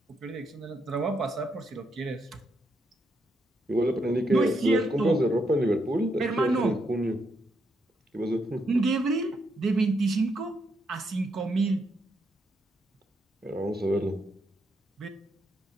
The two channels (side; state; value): both; normal; correlation 0.79